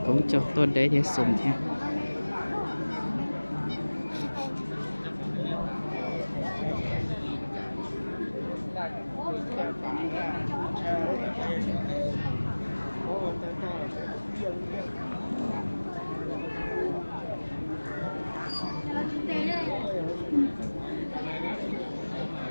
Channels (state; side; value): inverted; both; correlation -1.00